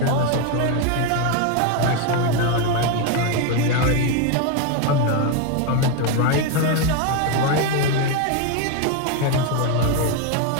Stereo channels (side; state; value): both; different; correlation 0.02